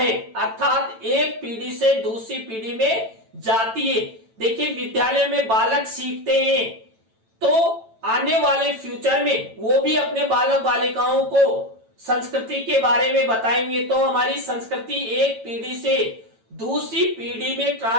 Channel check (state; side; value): late; left; 9.0 ms